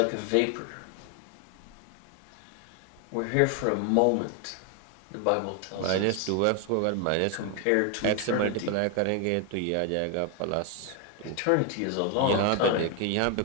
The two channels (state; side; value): different; both; correlation 0.01